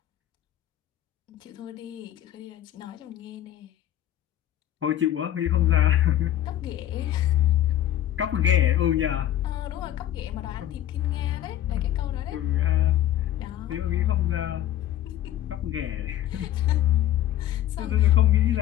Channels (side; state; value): right; quieter; 12.3 dB